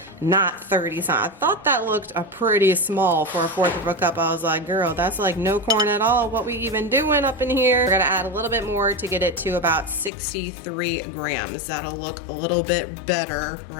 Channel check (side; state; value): right; drops out; at 10.1 s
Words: not 30. So I thought that looked pretty small for a fourth of a cup. I was like, girl, that's like no corn at all. What we even doing up in here? We're gonna add a little bit more to get it to about 63 grams. That'll look a little bit better,